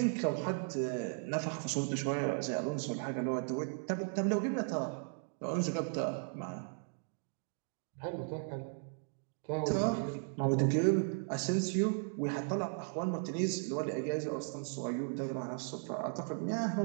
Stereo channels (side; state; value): left; silent; 54 dB below the other